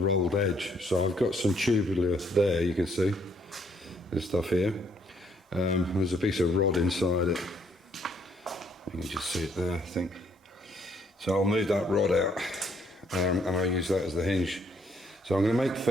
edge. So I've got some tubular there, you can see this stuff here. There's a piece of rod inside it. You can just see it there, I think. So I'll move that rod out, and I'll use that as the hinge. So I'm going to make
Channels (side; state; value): both; normal; correlation 0.68